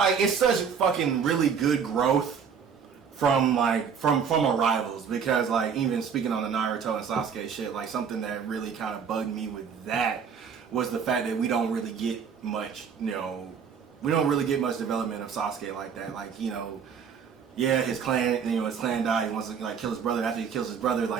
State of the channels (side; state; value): left; quieter; 6.8 dB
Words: it's such fucking really good growth from our rivals. Because, like, even speaking on the Naruto and Sasuke shit, like, something that really kind of bugged me with that was the fact that we don't really get much, we don't really get much development of Sasuke like that. Like, yeah, his clan died. He wants to like kill his brother. After he kills his brother,